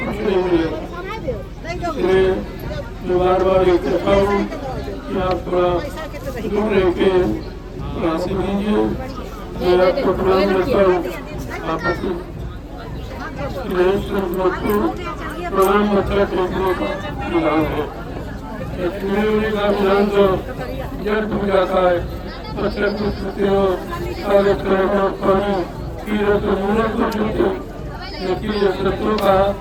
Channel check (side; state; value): both; identical; correlation 1.00